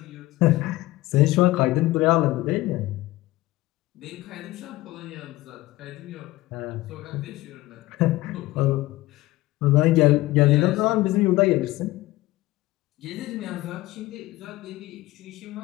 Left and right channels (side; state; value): right; quieter; 18.0 dB